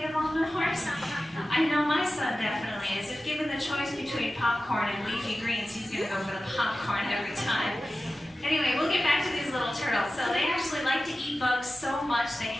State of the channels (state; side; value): normal; both; correlation 0.95